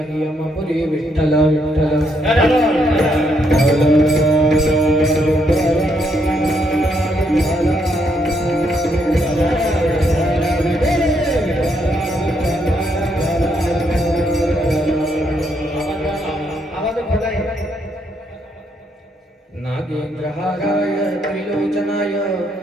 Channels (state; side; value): normal; both; correlation 0.75